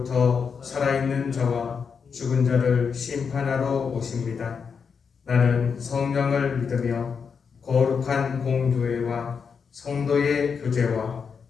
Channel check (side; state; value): right; quieter; 6.1 dB